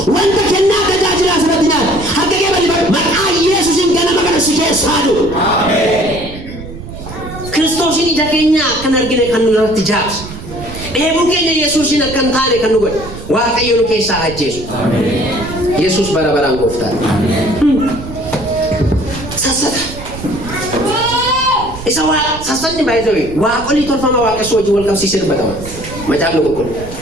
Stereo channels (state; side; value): noise; right; rumble, 12 dB below the sound